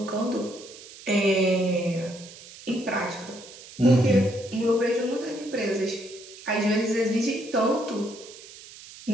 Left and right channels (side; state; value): right; noise; hiss, 18 dB below the sound